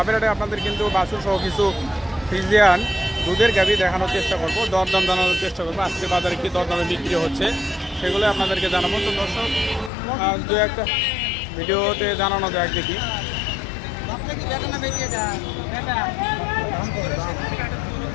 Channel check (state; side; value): drops out; right; at 9.9 s